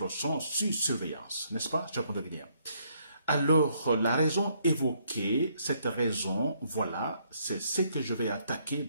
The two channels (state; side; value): inverted; both; correlation -0.70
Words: sont sous surveillance, n'est-ce pas? Je comprends bien. Alors, la raison évoquée, cette raison, voilà, c'est ce que je vais attaquer